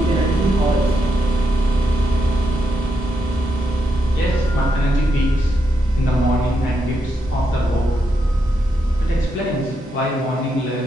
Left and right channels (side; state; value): both; normal; correlation 0.82